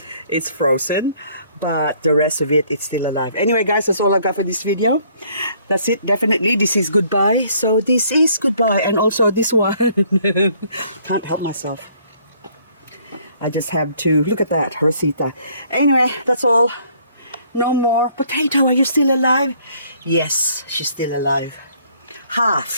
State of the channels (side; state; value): both; inverted; correlation -0.62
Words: it's frozen, but the rest of it, it's still alive. Anyway guys, that's all I got for this video. That's it, definitely. This is goodbye. So this is goodbye. And also this one, can't help myself. I just have to, look at that, Rosita. Anyway, that's all. No more. Potato, are you still alive? Yes, she's still alive.